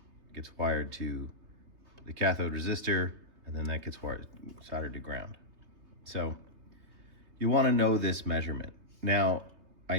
gets wired to the cathode resistor, and then that gets soldered to ground. So you want to know this measurement. Now, I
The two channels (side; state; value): left; late; 3.3 ms